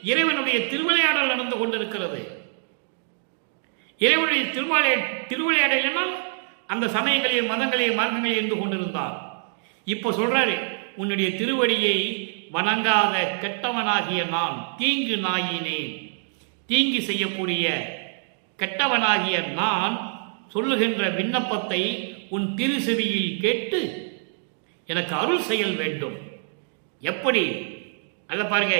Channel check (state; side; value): silent; left; 59 dB below the other